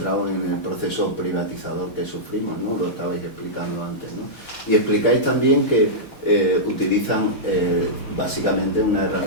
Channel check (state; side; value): late; right; 4.2 ms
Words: en el proceso privatizador que sufrimos, ¿no? Lo estabais explicando antes, ¿no? Y explicáis también que utilizan básicamente una